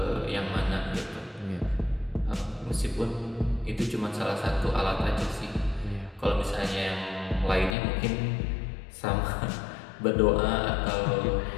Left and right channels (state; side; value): drops out; right; at 7.8 s